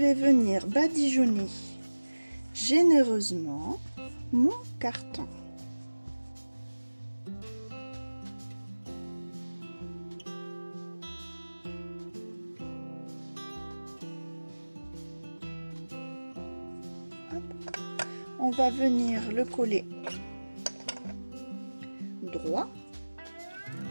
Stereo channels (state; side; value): inverted; both; correlation -1.00